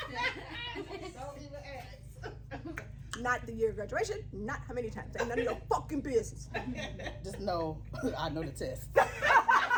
Don't even ask. Not the year of graduation. Not how many times. Ain't none of your fucking business. Just know, I know the test.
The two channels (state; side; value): identical; both; correlation 1.00